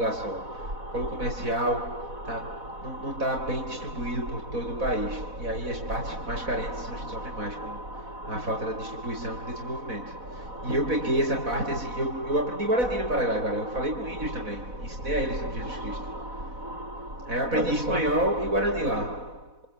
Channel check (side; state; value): left; late; 4.1 ms